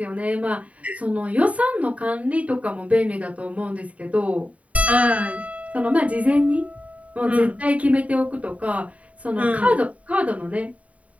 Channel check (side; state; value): left; late; 0.067 ms